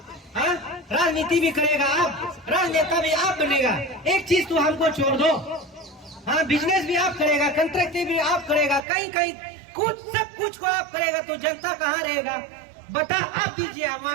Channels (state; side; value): drops out; left; at 8.8 s